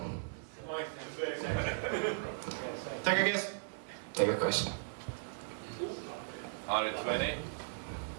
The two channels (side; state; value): left; silent; digital silence